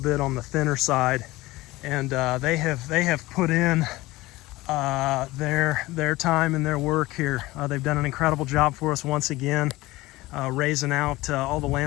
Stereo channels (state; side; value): quieter; right; 19.3 dB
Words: on the thinner side, and they have put in their time and their work here. They've done an incredible job for us once again, raising out all the